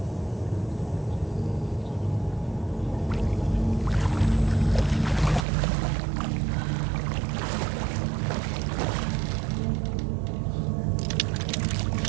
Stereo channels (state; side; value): drops out; left; at 5.5 s